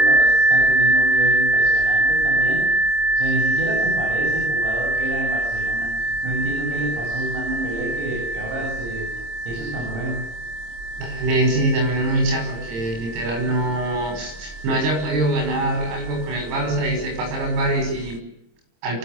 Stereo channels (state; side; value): late; left; 26 ms